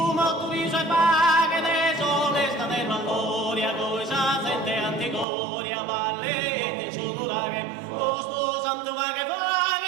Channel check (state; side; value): drops out; left; at 5.2 s